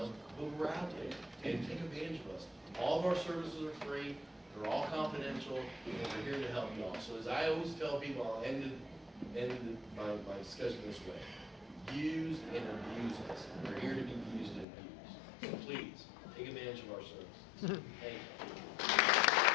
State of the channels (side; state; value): right; drops out; at 14.7 s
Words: but we're out there and take advantage of us. All of our services are free. They're all confidential, and we're here to help you all. So as I always tell people, I'll end my discussion this way: use and abuse us. We're here to be used and abused. So please take advantage of our services. Thank you.